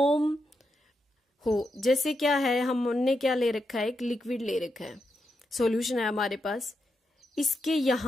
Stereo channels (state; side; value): normal; both; correlation 0.85